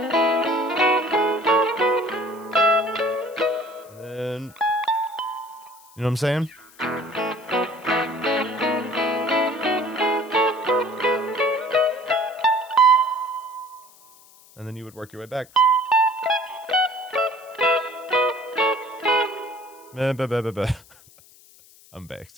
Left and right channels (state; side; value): noise; left; hiss, 25 dB below the sound